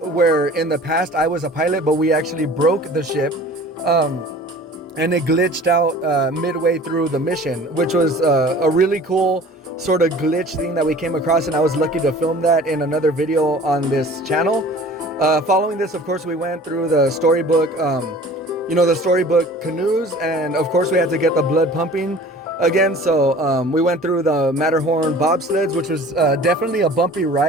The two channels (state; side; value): normal; both; correlation 0.45